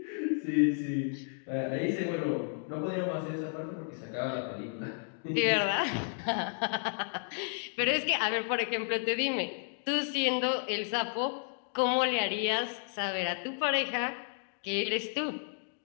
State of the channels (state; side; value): silent; right; 55 dB below the other